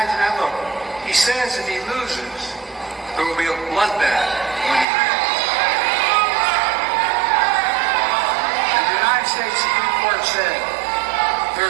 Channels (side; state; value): left; drops out; at 4.9 s